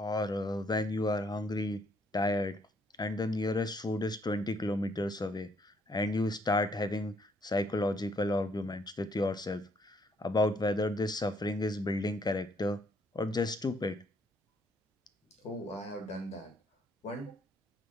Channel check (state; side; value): normal; both; correlation 0.68